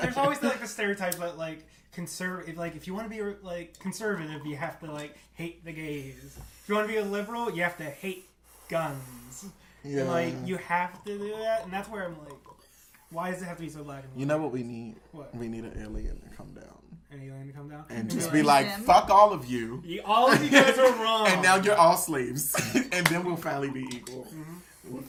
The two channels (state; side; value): identical; both; correlation 1.00